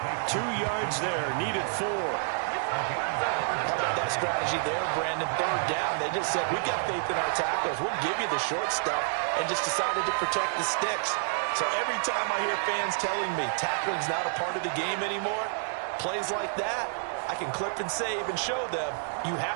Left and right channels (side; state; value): left; silent; digital silence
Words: 2 yards there, needed 4. How about that strategy there, Brandon? 3rd down. They just said, we got faith in our tacklers. We'll give you the short stuff, and just decided to protect the sticks. So every time I hear fans telling me tackling's not a part of the game anymore, plays like that, I can clip and save and show them you